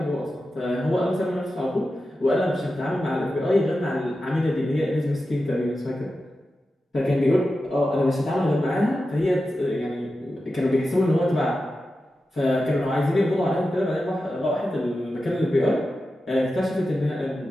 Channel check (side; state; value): both; normal; correlation 0.92